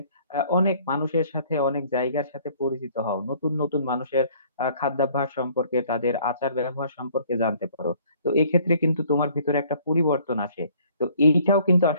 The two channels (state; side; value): inverted; both; correlation -0.58